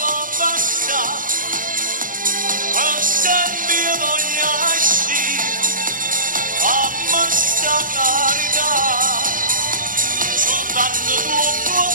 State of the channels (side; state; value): left; late; 0.40 ms